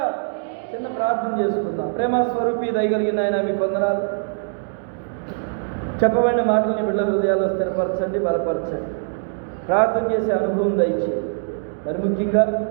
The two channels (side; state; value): left; silent; digital silence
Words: చిన్న ప్రార్థన చేసుకుందాం. ప్రేమ స్వరూపి దయగలిగిన ఆయన మీకు వందనాలు. చెప్పబడిన మాటలని బిడ్డల హృదయాల్లో స్థిరపరచండి, బలపరచండి. ప్రార్థన చేసే అనుభవం దయచేయండి. మరి ముఖ్యంగా